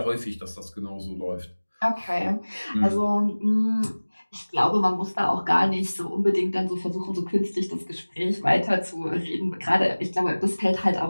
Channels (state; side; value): inverted; both; correlation -1.00